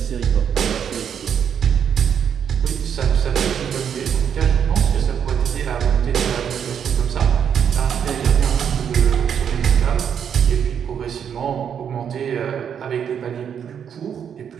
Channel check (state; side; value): quieter; left; 8.1 dB